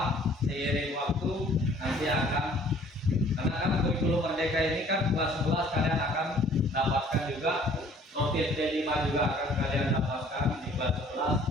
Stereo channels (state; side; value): normal; both; correlation 0.55